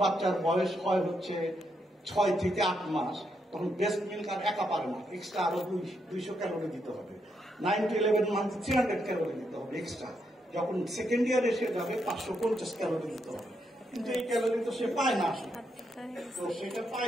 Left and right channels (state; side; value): normal; both; correlation 0.80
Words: বাচ্চার বয়স হয় হচ্ছে 6 থেকে 8 মাস, তখন ব্রেস্ট মিল্ক আর একা পারে না, এক্সট্রা আরো 200 ক্যালোরি দিতে হবে। 9 to 11 মান্থ 300 ক্যালোরি দিতে হবে এক্সট্রা। যখন সেকেন্ড ইয়ার এসে যাবে 550 ক্যালোরি দিতে হবে, কিন্তু এই ক্যালোরি তো সে পায় না আসলে। তো সেটা